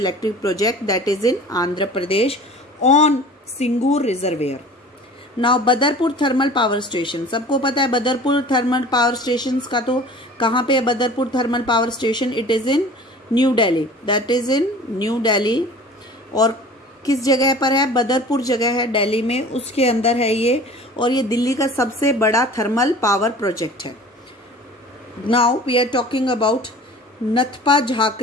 project that is in Andhra Pradesh on Singur reservoir. Now Badarpur thermal power station, सबको पता है बदरपुर थर्मल पावर स्टेशन का। तो कहाँ पे है Badarpur thermal power station? It is in new Delhi. That is in new Delhi. और किस जगह पर है? बदरपुर जगह है दिल्ली में, उसके अंदर है ये। और ये दिल्ली का सबसे बड़ा थर्मल पावर प्रोजेक्ट है। Now we are talking about Nathpa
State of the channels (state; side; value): normal; both; correlation 0.43